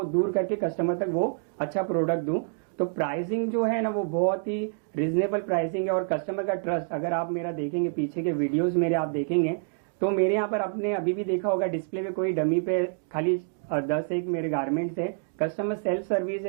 दूर करके कस्टमर तक वो अच्छा प्रोडक्ट दूँ। तो प्राइसिंग जो है ना वो बहुत ही रिजनेबल प्राइसिंग है और कस्टमर का ट्रस्ट, अगर आप मेरा देखेंगे पीछे के वीडियोस मेरे आप देखेंगे तो मेरे यहाँ पर आपने अभी भी देखा होगा डिस्प्ले पे कोई डमी पे खाली 10 एक मेरे गारमेंट्स है। कस्टमर सेल्फ सर्विस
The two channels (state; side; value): silent; left; digital silence